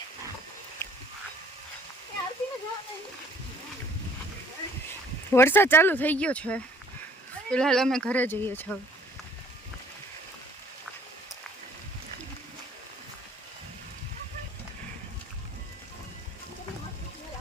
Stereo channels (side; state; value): both; normal; correlation 0.56